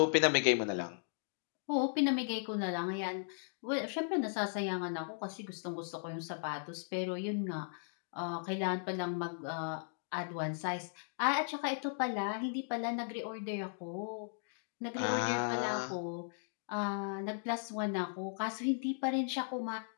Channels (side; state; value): right; silent; digital silence